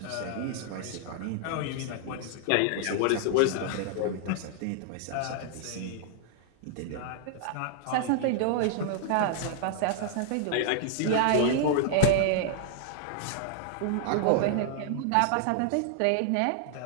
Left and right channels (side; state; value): both; different; correlation -0.01